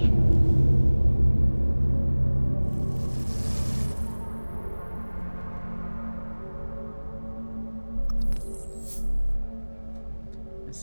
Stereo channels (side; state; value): both; inverted; correlation -1.00